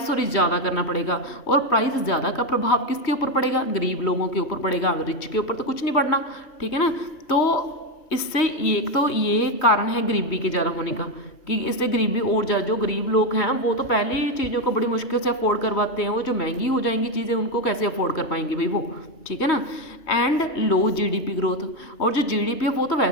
ज़्यादा करना पड़ेगा, और प्राइस ज़्यादा का प्रभाव किसके ऊपर पड़ेगा, गरीब लोगों के ऊपर पड़ेगा, रिच के ऊपर तो कुछ नहीं पड़ना, ठीक है ना। तो इससे एक तो ये कारण है गरीबी के ज़्यादा होने का, कि इससे गरीबी और ज़्यादा, जो गरीब लोग हैं वो तो पहले ही चीज़ों को बड़ी मुश्किल से अफोर्ड करवाते हैं, वो जो महंगी हो जाएंगी चीज़ें उनको कैसे अफोर्ड कर पाएंगे भाई वो, ठीक है ना। एंड लो जीडीपी ग्रोथ, और जो जीडीपी है वो तो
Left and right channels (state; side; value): late; right; 3.4 ms